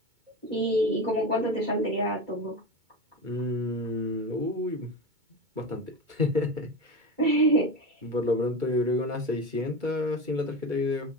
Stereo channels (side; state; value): left; late; 2.2 ms